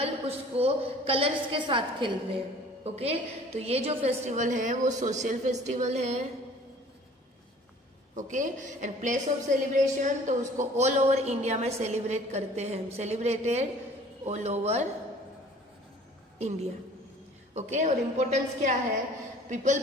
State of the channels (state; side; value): normal; both; correlation 0.50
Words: उसको कलर्स के साथ खेलते हैं. ओके, तो ये जो फेस्टिवल है वो सोशल फेस्टिवल है. Okay, and place of celebration, तो उसको ऑल ओवर इंडिया में सेलिब्रेट करते हैं. Celebrated all over India. Okay, और इम्पोर्टेंस क्या है? People